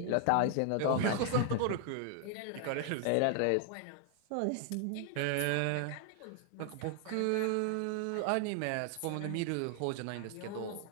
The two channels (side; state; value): both; different; correlation 0.00